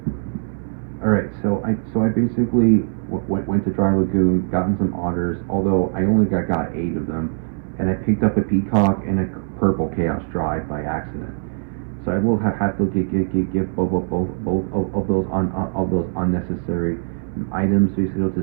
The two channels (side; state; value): left; silent; digital silence